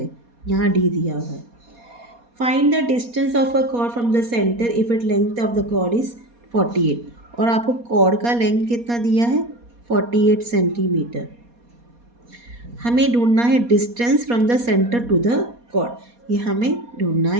यहाँ D दिया हुआ है. Find the distance of a chord from the centre if it length of the chord is 48. और आपको कॉर्ड का लेंथ कितना दिया है, 48 सेंटीमीटर. हमें ढूंढना है distance from the centre to the chord. ये हमें ढूंढना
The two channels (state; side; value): late; left; 4.2 ms